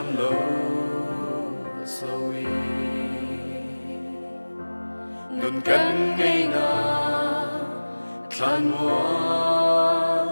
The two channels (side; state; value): both; inverted; correlation -1.00